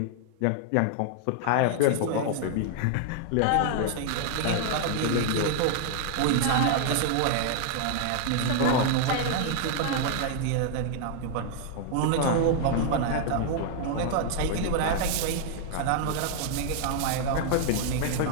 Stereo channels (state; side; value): different; both; correlation 0.00